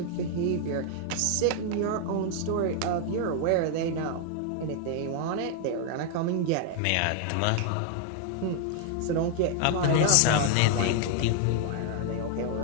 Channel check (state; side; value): different; both; correlation 0.00